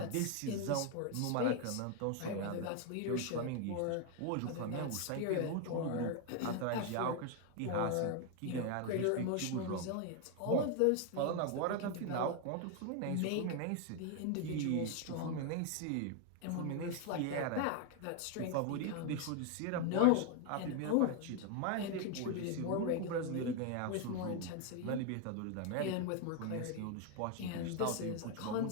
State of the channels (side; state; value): both; different; correlation 0.01